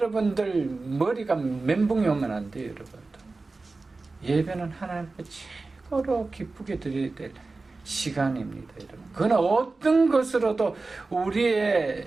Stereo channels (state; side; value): quieter; left; 3.6 dB